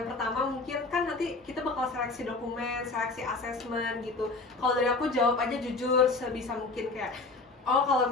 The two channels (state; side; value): quieter; right; 3.6 dB